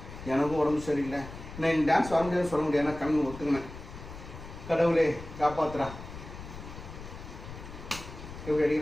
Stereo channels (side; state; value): left; noise; rumble, 13 dB below the sound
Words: எனக்கும் உடம்பு சரியில்லை நான் டான்ஸ் வர முடியாது சொல்ல முடியாது ஏன்னா கண்ணு ஒத்துக்கினேன் கடவுளே காப்பாத்துறா எப்படி